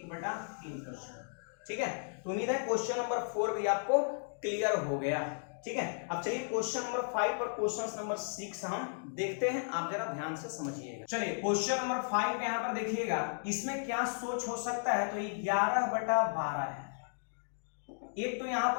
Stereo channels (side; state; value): right; silent; digital silence